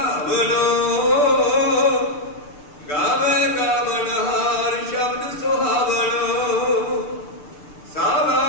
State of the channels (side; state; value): right; late; 6.8 ms